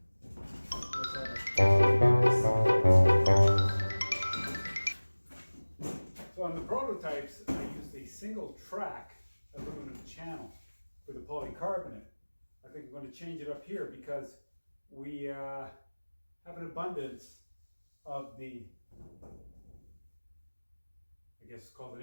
So on the prototypes, I used a single track aluminum channel for the polycarbonate. I think I'm going to change it up here because we have an abundance of the, I guess it's called an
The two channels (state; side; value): inverted; both; correlation -1.00